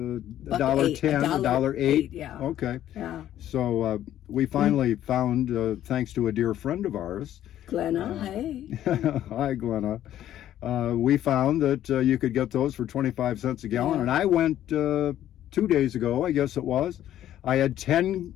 $1.08. Yeah. Okay. Yeah. So we finally found, thanks to a dear friend of ours, Glenna, hey. Hi, Glenna. We found that you could get those for 25 cents a gallon. And I went 2 days ago, I guess it was. I had 10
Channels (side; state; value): right; quieter; 12.0 dB